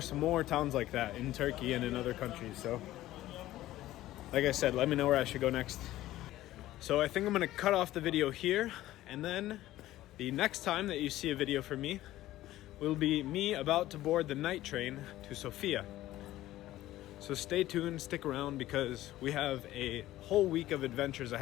more towns like that in Turkey and in other countries. So, like I said, let me know where I should go next. So I think I'm gonna cut off the video here, and then the next time that you see a video from me will be me about to board the night train to Sofia. So stay tuned, stick around, because we have a whole week of adventures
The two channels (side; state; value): right; quieter; 15.2 dB